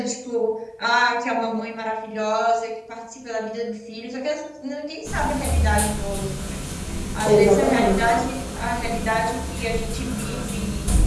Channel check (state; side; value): identical; both; correlation 1.00